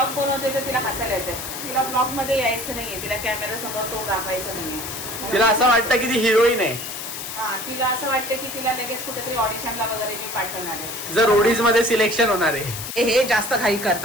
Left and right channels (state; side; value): noise; left; hiss, 7 dB below the sound